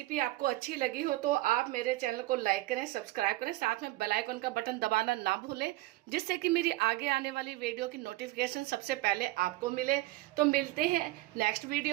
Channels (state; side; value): quieter; left; 18.5 dB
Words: आपको अच्छी लगी हो तो आप मेरे चैनल को लाइक करें, सब्सक्राइब करें, साथ में बेल आइकन का बटन दबाना ना भूलें, जिससे कि मेरी आगे आने वाली वीडियो की नोटिफिकेशन सबसे पहले आपको मिले। तो मिलते हैं नेक्स्ट